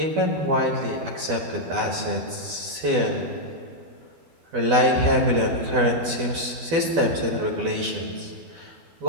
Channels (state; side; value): late; left; 12 ms